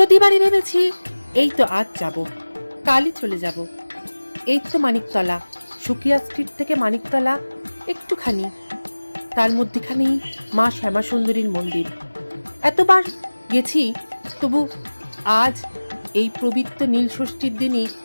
ভেবেছি এই তো আজ যাব, কালই চলে যাব। এই তো মানিকতলা, সুকিয়া স্ট্রিট থেকে মানিকতলা একটুখানি, তার মধ্যেখানেই মা শ্যামা সুন্দরীর মন্দির। এতবার গেছি, তবু আজ এই পবিত্র নীলষষ্ঠীর দিনই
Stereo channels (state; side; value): inverted; both; correlation -1.00